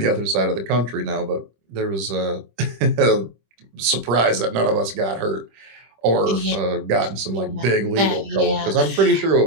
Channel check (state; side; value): late; left; 25 ms